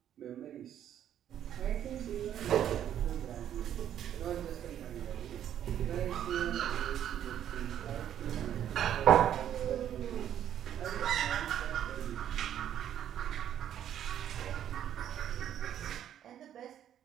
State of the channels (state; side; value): quieter; left; 10.4 dB